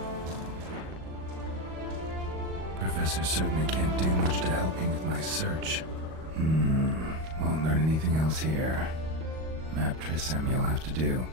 Professor certainly can't do much to help me with my search. Won't learn anything else here. Map Trisem you'll have to do.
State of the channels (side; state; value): left; late; 38 ms